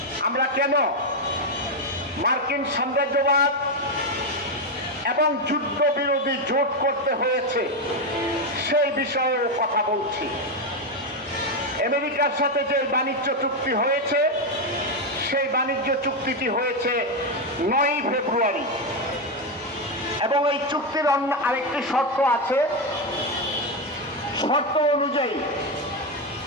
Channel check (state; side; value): normal; both; correlation 0.07